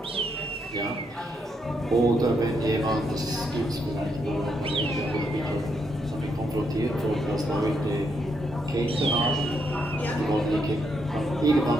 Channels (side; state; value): both; normal; correlation 0.78